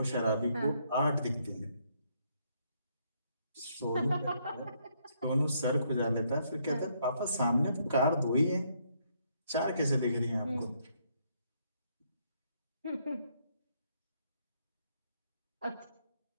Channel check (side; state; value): both; inverted; correlation -0.72